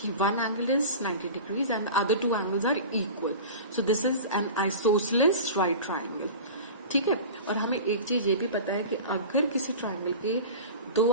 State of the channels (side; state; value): both; inverted; correlation -0.34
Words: one angle is 90 degrees and other two angles are equal, so this is an isosceles right triangle. ठीक है, और हमें एक चीज ये भी पता है कि अगर किसी ट्राइंगल के